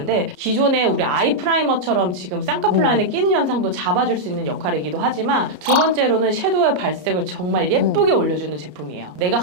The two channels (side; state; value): left; late; 33 ms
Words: 기존에 우리 아이 프라이머처럼 지금 쌍꺼풀 라인에 끼는 현상도 잡아줄 수 있는 역할이기도 하지만 두 번째로는 섀도우의 발색을 정말 예쁘게 올려주는 제품이에요. 내가